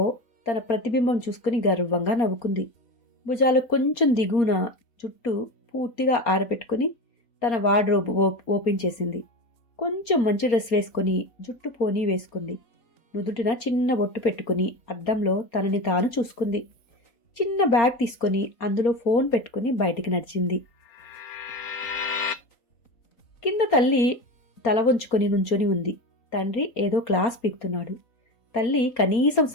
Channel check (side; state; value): right; late; 4.3 ms